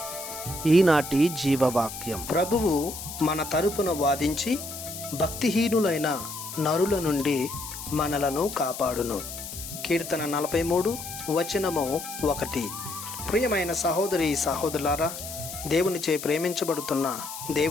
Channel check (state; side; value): noise; left; hiss, 10 dB below the sound